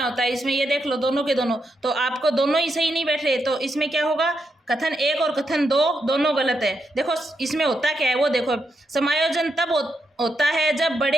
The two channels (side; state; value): both; normal; correlation 0.82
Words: होता है इसमें, ये देख लो दोनों के दोनों। तो आपको दोनों ही सही नहीं बैठ रहे, तो इसमें क्या होगा? कथन 1 और कथन 2 दोनों गलत है। देखो इसमें होता क्या है वो देखो, समायोजन तब होता है जब